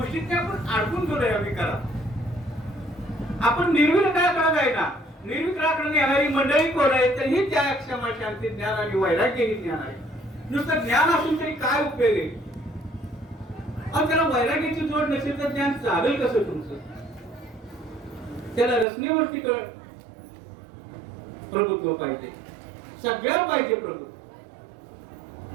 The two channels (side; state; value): left; drops out; at 18.9 s